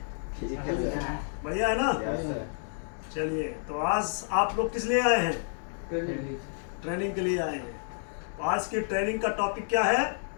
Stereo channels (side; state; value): right; silent; digital silence